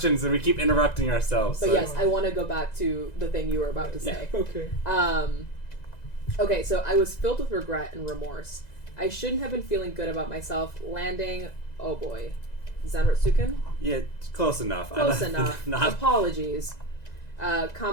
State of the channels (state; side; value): late; right; 2.0 ms